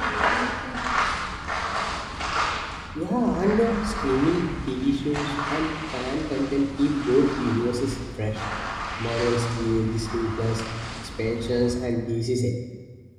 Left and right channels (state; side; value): identical; both; correlation 1.00